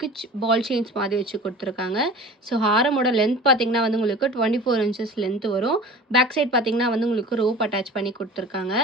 பால் செயின்ஸ் மாதிரி வச்சு கொடுத்துருக்காங்க. ஸோ ஹாரமோட லென்த் பார்த்தீங்கன்னா வந்து உங்களுக்கு 24 inches லென்த் வரும். பேக் சைட் பார்த்தீங்கன்னா வந்து உங்களுக்கு ரோப் அட்டாச் பண்ணி கொடுத்துருக்காங்க.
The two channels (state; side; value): normal; both; correlation 0.40